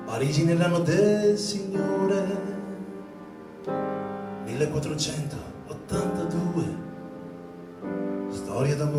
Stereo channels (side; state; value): both; identical; correlation 1.00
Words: Parigi nell'anno del Signore 1482, storia